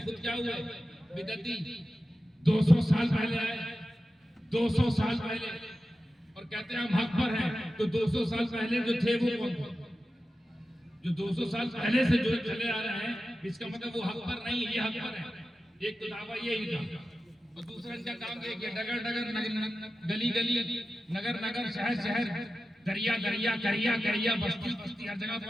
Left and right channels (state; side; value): normal; both; correlation 0.93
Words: खुद क्या हुआ बिदअती 200 साल पहले आए, 200 साल पहले, और कहते हैं हम हक पर हैं। तो 200 साल पहले जो थे वो कौन थे? जो 200 साल पहले से जो चले आ रहे हैं, इसका मतलब वो हक पर नहीं, ये हक पर है। एक तो दावा ये ही था, और दूसरा इनका काम देखिए, डगर डगर गली गली नगर नगर शहर शहर दरिया दरिया करिया करिया बस्ती बस्ती हर जगह